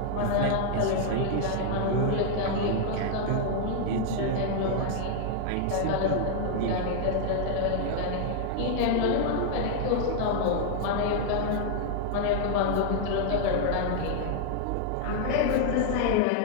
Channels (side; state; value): both; different; correlation 0.00